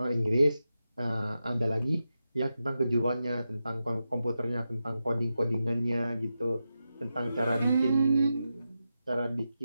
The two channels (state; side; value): inverted; both; correlation -0.90